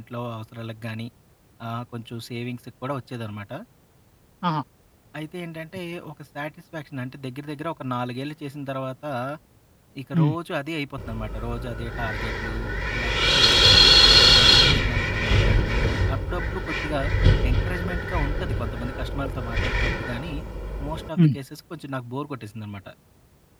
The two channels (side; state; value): both; identical; correlation 1.00